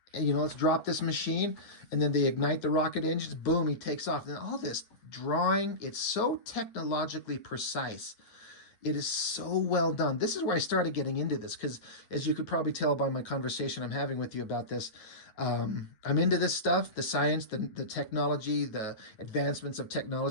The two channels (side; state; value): right; late; 9.4 ms